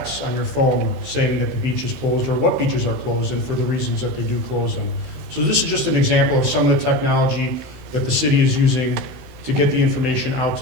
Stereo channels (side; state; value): left; late; 15 ms